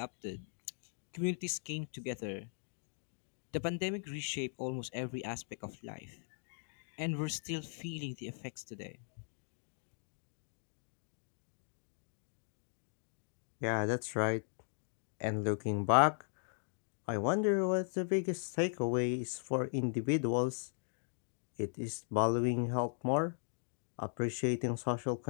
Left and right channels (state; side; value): silent; right; digital silence